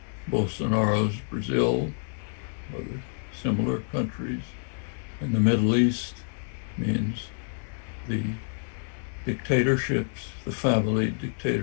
Bolsonaro's Brazil, other similar countries. In the Middle East means the dictatorships, the family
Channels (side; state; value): right; silent; digital silence